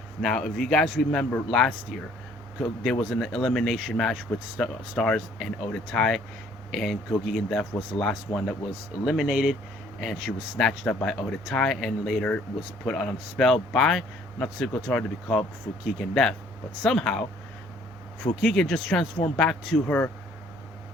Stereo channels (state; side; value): normal; both; correlation 0.59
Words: Now, if you guys remember last year, there was an elimination match with Stars and Oda Tai, and Kokigen Death was the last one that was eliminated, and she was snatched up by Oda Tai and later was put on a spell by Natsuko Tora to be called Fukigen Death. But somehow Fukigen just transformed back to her